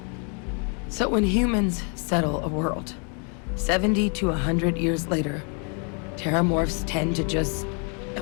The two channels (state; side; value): quieter; right; 38.5 dB